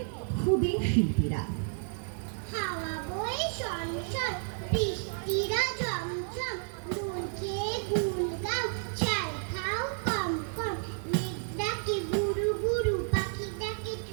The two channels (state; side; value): silent; left; 57 dB below the other